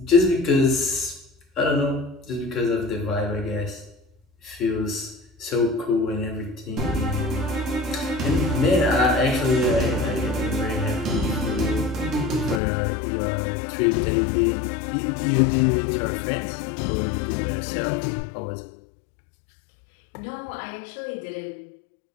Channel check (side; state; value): right; drops out; at 12.6 s